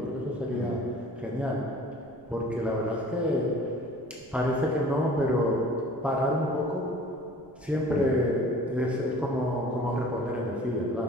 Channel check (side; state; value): right; noise; rumble, 26 dB below the sound